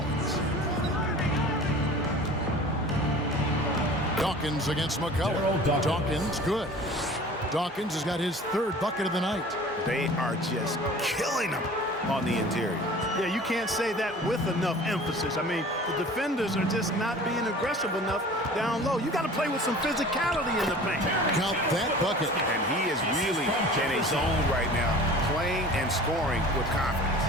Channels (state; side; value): normal; both; correlation 0.43